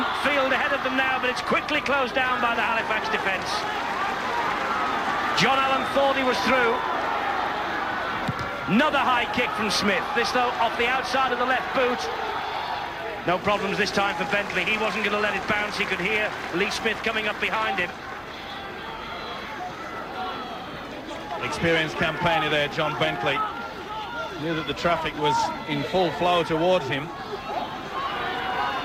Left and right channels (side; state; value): both; identical; correlation 1.00